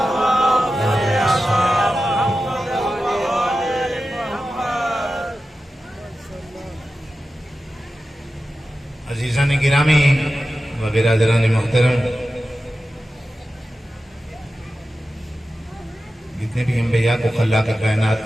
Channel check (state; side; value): normal; both; correlation 0.93